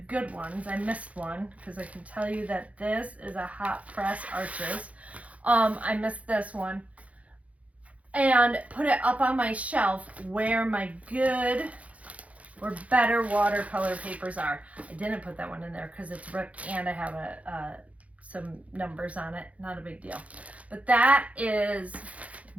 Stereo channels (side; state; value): left; late; 0.066 ms